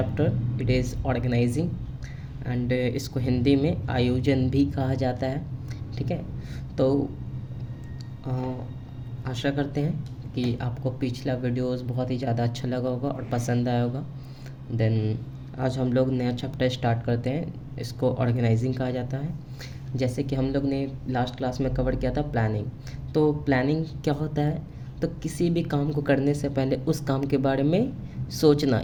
it is organising. एंड इसको हिंदी में आयोजन भी कहा जाता है। ठीक है, तो आशा करते हैं कि आपको पिछला वीडियोस बहुत ही ज़्यादा अच्छा लगा होगा और पसंद आया होगा। देन आज हम लोग नया चैप्टर स्टार्ट करते हैं, इसको ऑर्गेनाइजिंग कहा जाता है। जैसे कि हम लोग ने लास्ट क्लास में कवर किया था प्लानिंग। तो प्लानिंग क्या होता है, तो किसी भी काम को करने से पहले उस काम के बारे में सोचना,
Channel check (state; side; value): identical; both; correlation 1.00